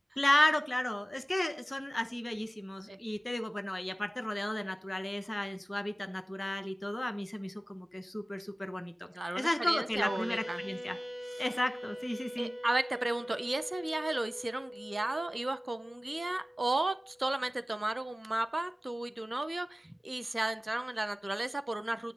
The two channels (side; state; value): both; normal; correlation 0.97